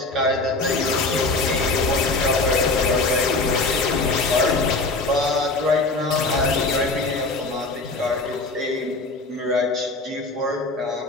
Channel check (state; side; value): quieter; right; 3.3 dB